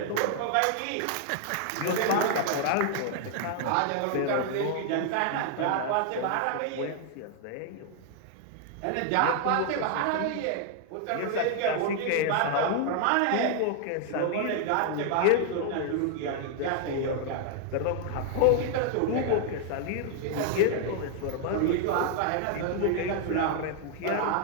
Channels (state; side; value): different; both; correlation 0.00